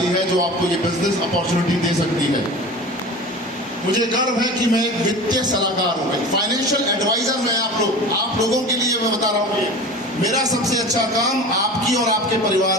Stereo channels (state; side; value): normal; both; correlation 0.35